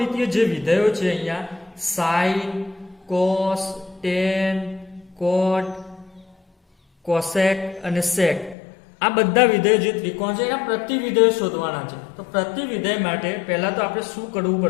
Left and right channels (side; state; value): right; drops out; at 8.6 s